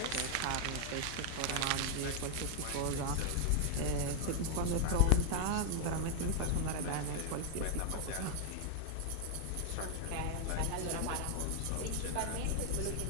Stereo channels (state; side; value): different; both; correlation 0.00